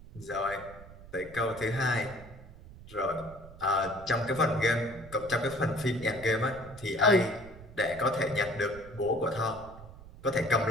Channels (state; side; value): noise; right; rumble, 17 dB below the sound